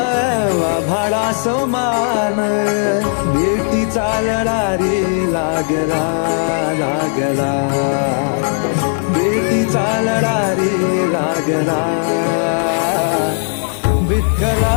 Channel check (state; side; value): silent; right; digital silence